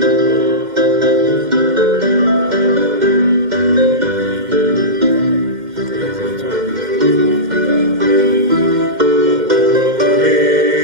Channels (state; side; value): late; left; 2.1 ms